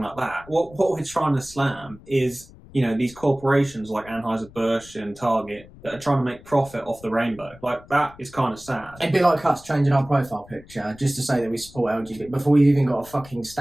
like that. What we're trying to slam is, you know, these corporations like Anheuser-Busch and Target that are trying to make profit off the rainbow. Like, that is kind of sad. It'd be like us changing our profile picture just to say that we support LGBT before we've even got a fucking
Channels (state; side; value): noise; left; rumble, 21 dB below the sound